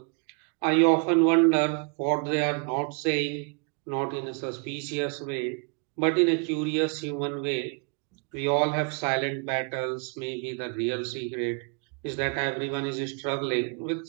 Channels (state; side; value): quieter; left; 38.0 dB